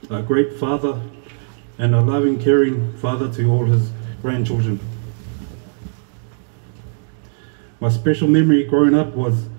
a great father and a loving, caring father to all his grandchildren. My special memory growing up was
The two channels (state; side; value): silent; left; digital silence